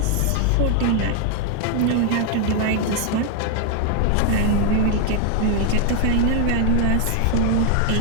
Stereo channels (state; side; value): different; both; correlation 0.00